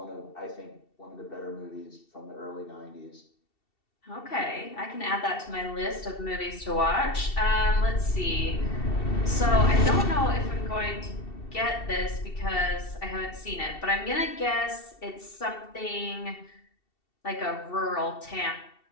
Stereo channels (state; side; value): late; right; 2.7 ms